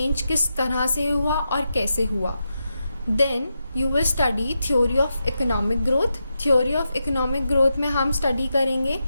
किस तरह से हुआ और कैसे हुआ. Then you will study theory of economic growth. Theory of economic growth में हम स्टडी करेंगे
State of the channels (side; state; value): both; inverted; correlation -0.87